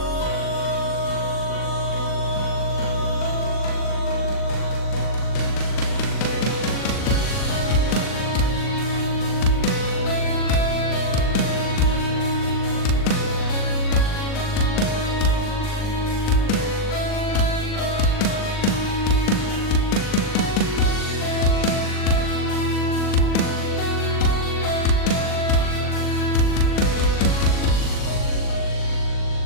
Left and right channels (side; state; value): right; late; 40 ms